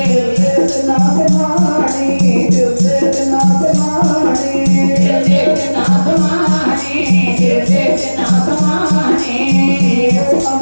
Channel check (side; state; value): both; inverted; correlation -1.00